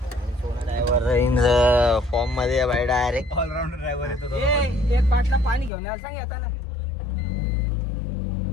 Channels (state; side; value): drops out; right; at 5.7 s